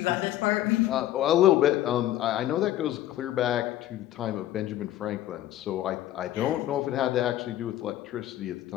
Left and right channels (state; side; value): quieter; right; 13.5 dB